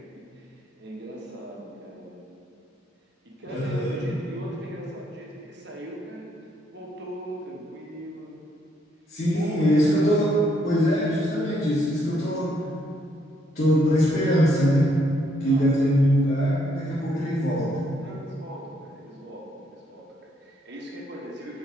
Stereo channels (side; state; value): both; normal; correlation 0.72